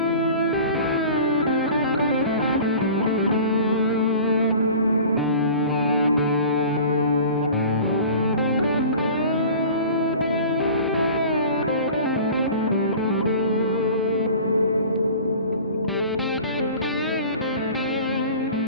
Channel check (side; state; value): both; inverted; correlation -0.41